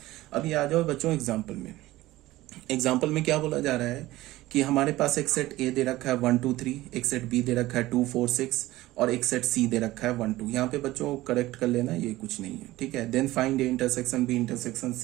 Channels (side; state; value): left; quieter; 17.3 dB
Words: अभी आ जाओ बच्चों एग्जाम्पल में। एग्जाम्पल में क्या बोला जा रहा है कि हमारे पास एक सेट A दे रखा है 1 2 3, एक सेट B दे रखा है 2 4 6 और एक सेट C दे रखा है 1 2। यहाँ पे बच्चों करेक्ट कर लेना, ये कुछ नहीं है। ठीक है, then find A intersection B intersection